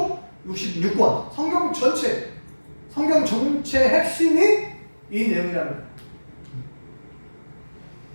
66권. 성경 전체, 성경 전체 핵심이 이 내용이라는 거예요.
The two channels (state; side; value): inverted; both; correlation -1.00